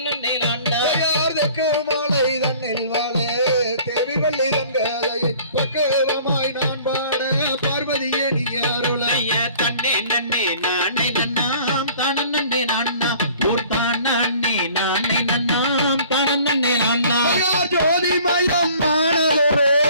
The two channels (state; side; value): inverted; both; correlation -0.51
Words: நன்னாம் யார் தெற்கு மாலை தன்னில் வாழே தேவி வள்ளி தங்காதையை பக்குவமாய் நான் பாட பார்வதியே நீ அருளை செய்ய தன்னே நன்னே நானே நன்னாம் தனனே நன்னாம் பூர்த்தான் நன்னே நானே நன்னாம் தனனே நன்னாம் யார் ஜோதி மயம் ஆனதொரு